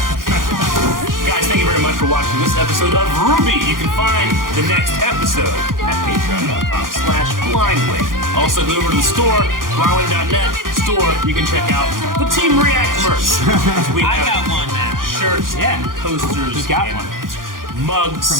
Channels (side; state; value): left; late; 0.90 ms